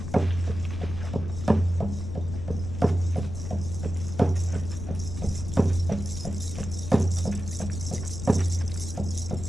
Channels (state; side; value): noise; left; rumble, 7 dB below the sound